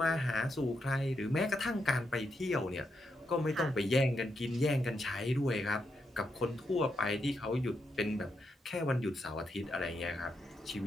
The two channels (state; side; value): normal; both; correlation 0.82